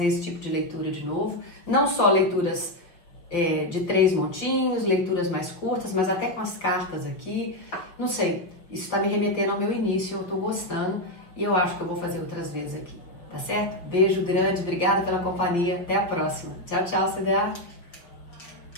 esse tipo de leitura de novo. Não só leituras de 3 montinhos, leituras mais curtas, mas até com as cartas aqui. Não sei, isso está me remetendo ao meu início, eu estou gostando e eu acho que eu vou fazer outras vezes aqui, tá certo? Beijo grande, obrigada pela companhia, até a próxima. Tchau, tchau, CDA!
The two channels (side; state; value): right; late; 5.5 ms